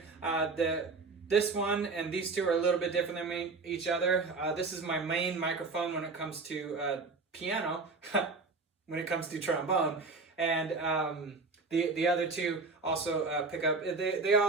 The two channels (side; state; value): left; quieter; 4.0 dB